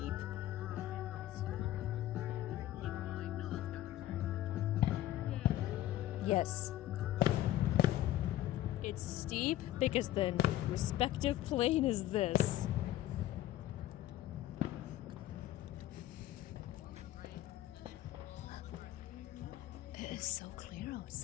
Yes. It's steep because the respective plane is this. It is so clear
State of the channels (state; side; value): quieter; right; 13.9 dB